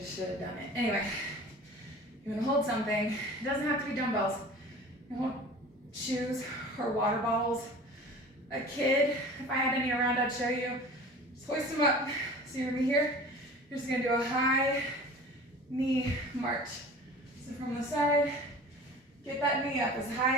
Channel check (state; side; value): normal; both; correlation 0.41